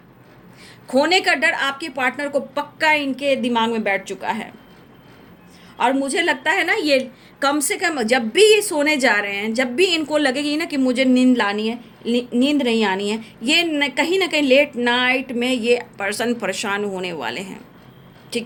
खोने का डर आपके पार्टनर को पक्का इनके दिमाग में बैठ चुका है, और मुझे लगता है ना ये कम से कम जब भी ये सोने जा रहे हैं, जब भी इनको लगेगी ना कि मुझे नींद लानी है, नींद नहीं आनी है, ये कहीं ना कहीं लेट नाइट में ये पर्सन परेशान होने वाले हैं,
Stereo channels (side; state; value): both; identical; correlation 1.00